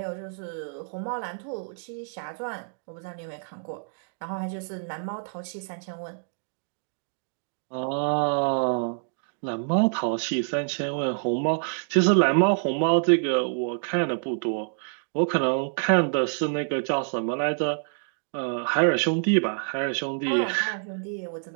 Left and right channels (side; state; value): left; silent; digital silence